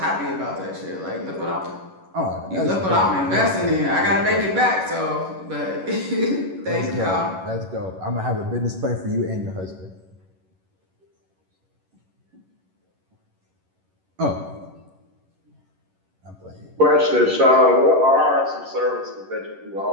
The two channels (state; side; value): late; left; 11 ms